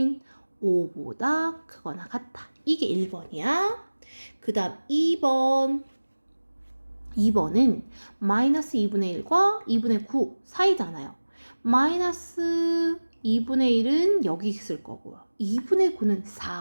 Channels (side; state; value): both; inverted; correlation -1.00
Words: 5보다 크거나 같다. 이게 1번이야. 그 다음 2번은 마이너스 2분의 1과 2분의 9 사이잖아요. 마이너스 2분의 1은 여기 있을 거고요. 2분의 9는